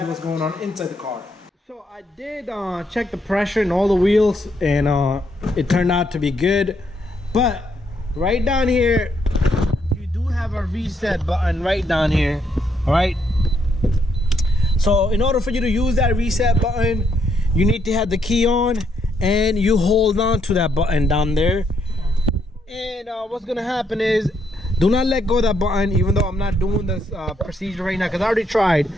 what's going on inside the car. So I did check the pressure in all the wheels, and it turned out to be good. But right down here, you do have a reset button right down here. All right. So in order for you to use that reset button, you need to have the key on, and you hold on to that button down there. And what's gonna happen is, do not let go of that button, even though I'm not doing this procedure right now, because I already tried.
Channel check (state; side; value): normal; both; correlation 0.75